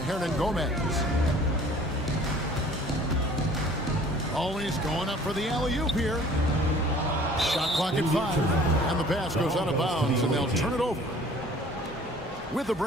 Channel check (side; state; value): both; normal; correlation 0.51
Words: Gomez. Always going up for the alley-oop here. Shot clock at 5. And the pass goes out of bounds, and they'll turn it over. With the